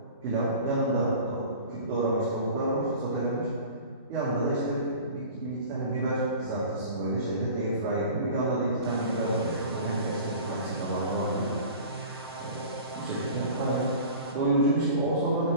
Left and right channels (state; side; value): inverted; both; correlation -0.41